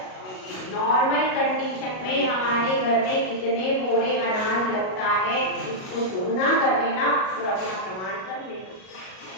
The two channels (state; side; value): late; right; 38 ms